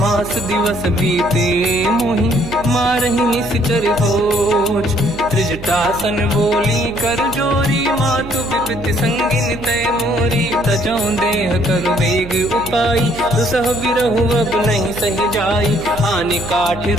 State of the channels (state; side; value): noise; right; hum, 14 dB below the sound